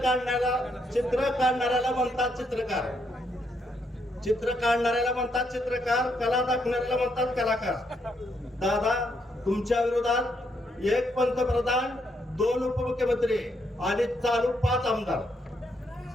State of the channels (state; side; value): normal; both; correlation 0.76